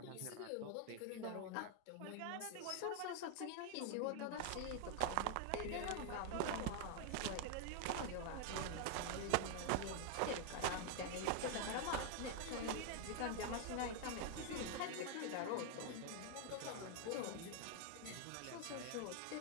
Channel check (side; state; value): both; different; correlation 0.00